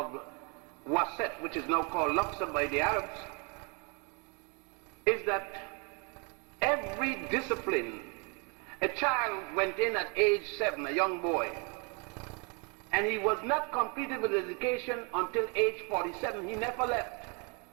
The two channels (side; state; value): left; quieter; 33.7 dB